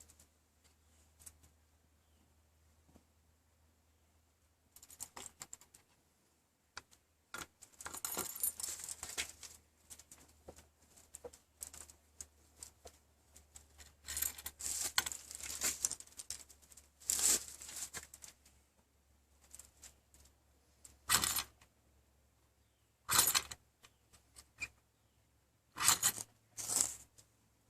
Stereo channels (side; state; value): both; identical; correlation 1.00